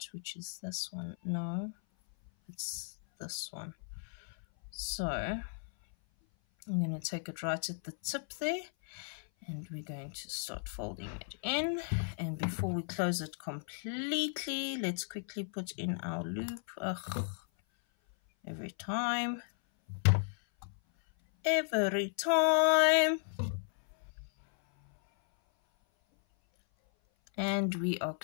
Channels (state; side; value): silent; right; 54 dB below the other